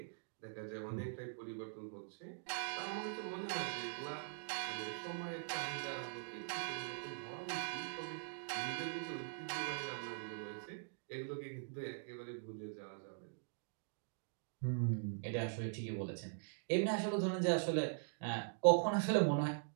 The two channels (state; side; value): silent; left; digital silence